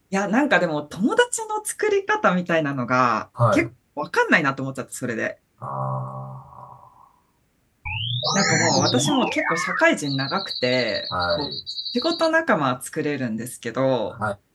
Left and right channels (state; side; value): identical; both; correlation 1.00